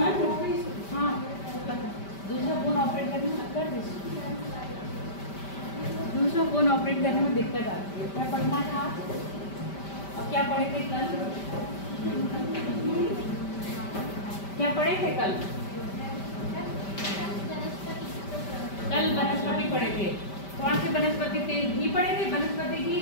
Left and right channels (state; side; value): late; right; 5.1 ms